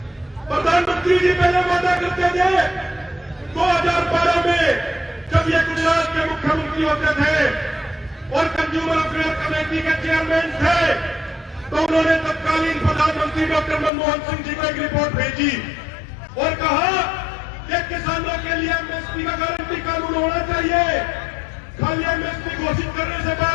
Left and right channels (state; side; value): drops out; right; at 13.9 s